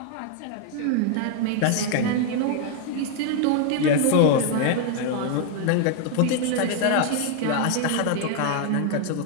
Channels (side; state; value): both; different; correlation 0.00